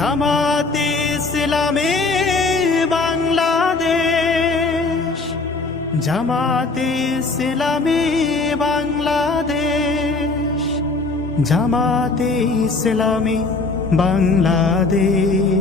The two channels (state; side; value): quieter; right; 3.7 dB